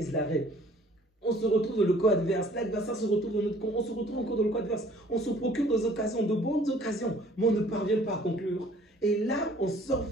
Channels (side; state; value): both; normal; correlation 0.55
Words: l'arrêt. On se retrouve dans le camp adverse. L'adversaire se retrouve dans notre camp. On se retrouve encore dans le camp adverse. On se procure des occasions, de bonnes occasions. Mais on ne parvient pas à conclure. Et là, on sort